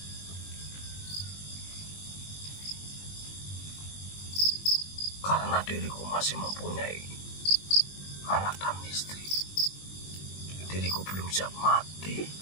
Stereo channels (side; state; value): right; late; 20 ms